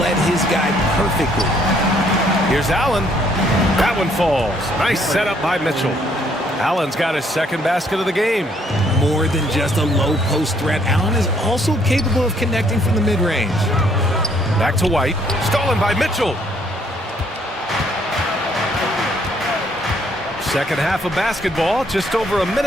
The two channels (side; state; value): both; normal; correlation 0.66